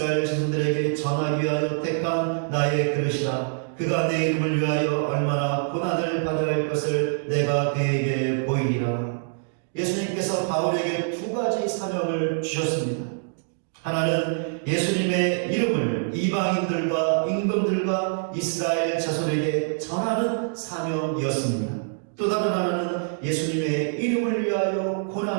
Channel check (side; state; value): left; silent; digital silence